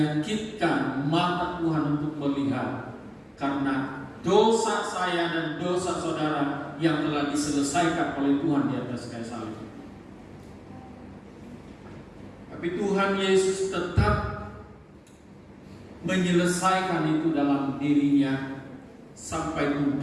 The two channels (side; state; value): both; identical; correlation 1.00